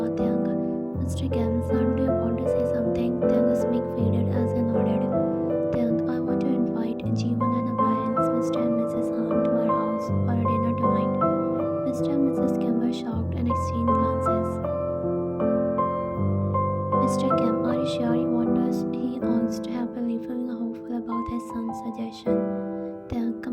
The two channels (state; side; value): identical; both; correlation 1.00